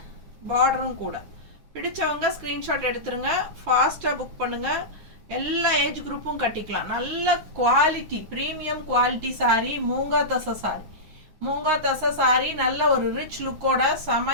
பார்டரும் கூட. பிடிச்சவங்க ஸ்க்ரீன்ஷாட் எடுத்துருங்க, ஃபாஸ்ட்டாக புக் பண்ணுங்கள். எல்லா ஏஜ் குரூப்பும் கட்டிக்கலாம். நல்ல quality, premium quality sari. Moonga தசை சாரீ. நல்ல ஒரு ரிச் லுக்கோட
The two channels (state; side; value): late; left; 9.6 ms